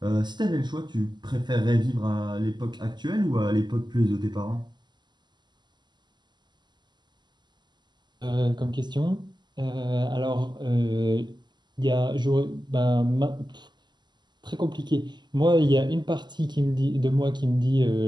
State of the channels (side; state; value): left; late; 0.21 ms